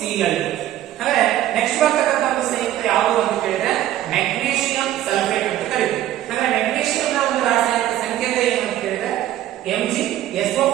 ಹಾಗಾದ್ರೆ ನೆಕ್ಸ್ಟ್ ಬರ್ತಕ್ಕಂಥ ಒಂದು ಸಂಯುಕ್ತ ಯಾವುದು ಅಂತ ಕೇಳಿದ್ರೆ ಮೆಗ್ನೀಷಿಯಂ ಸಲ್ಫೇಟ್ ಅಂತ ಕರೀತೀವಿ. ಹಾಗಾದ್ರೆ ಮೆಗ್ನೀಷಿಯಂ ನ ಒಂದು ರಾಸಾಯನಿಕ ಸಂಕೇತ ಏನು ಅಂತ ಕೇಳಿದ್ರೆ Mg,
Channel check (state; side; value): quieter; left; 13.0 dB